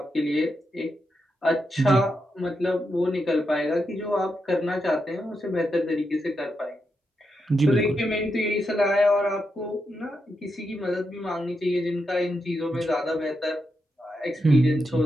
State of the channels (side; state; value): both; normal; correlation 0.85